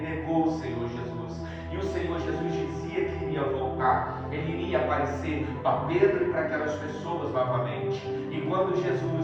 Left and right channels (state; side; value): identical; both; correlation 1.00